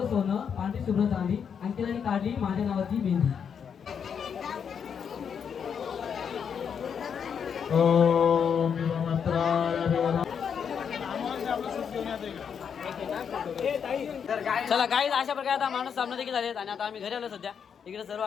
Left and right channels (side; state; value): right; quieter; 7.2 dB